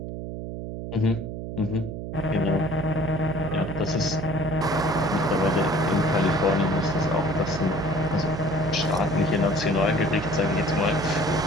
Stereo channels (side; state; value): right; noise; hum, 7 dB below the sound